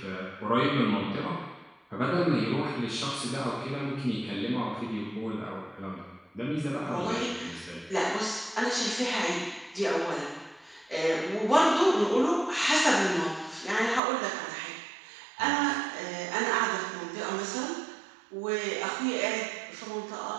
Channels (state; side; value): drops out; left; at 14.0 s